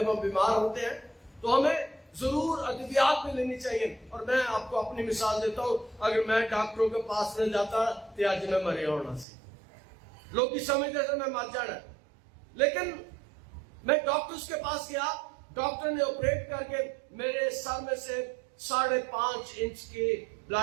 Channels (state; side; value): drops out; left; at 9.2 s